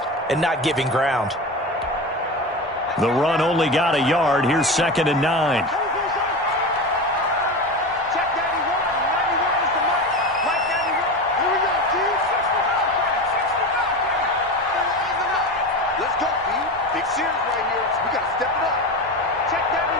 and not giving ground. The run only got a yard. Here's 2nd and 9.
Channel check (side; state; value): both; normal; correlation 0.25